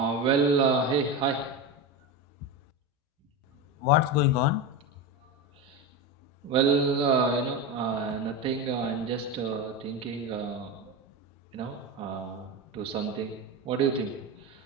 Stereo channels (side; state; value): both; normal; correlation 0.19